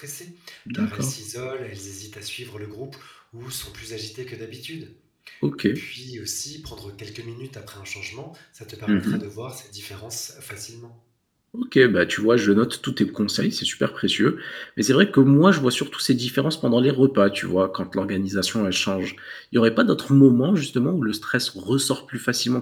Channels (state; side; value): identical; both; correlation 1.00